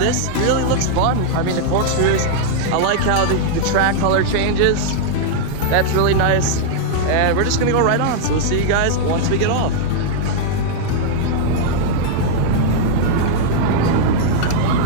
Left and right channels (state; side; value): different; both; correlation -0.01